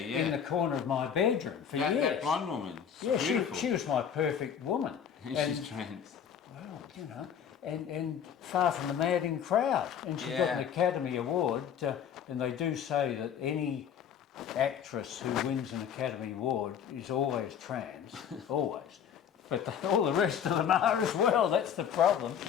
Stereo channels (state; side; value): quieter; right; 8.3 dB